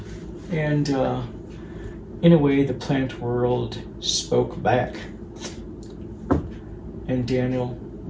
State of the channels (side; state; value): both; identical; correlation 1.00